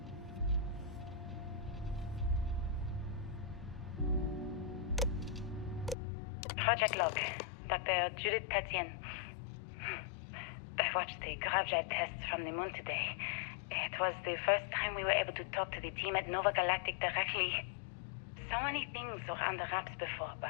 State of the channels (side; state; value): right; drops out; at 6.0 s